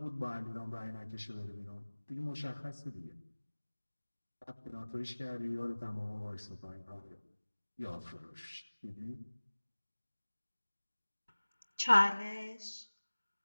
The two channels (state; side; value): inverted; both; correlation -1.00